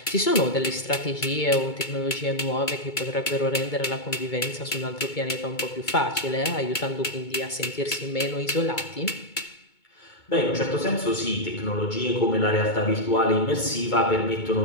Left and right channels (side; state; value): right; late; 2.2 ms